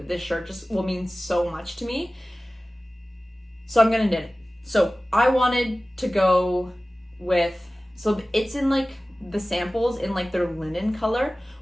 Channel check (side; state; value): both; normal; correlation 0.97